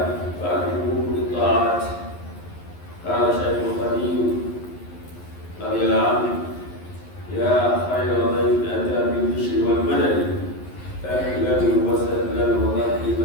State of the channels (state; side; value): late; right; 11 ms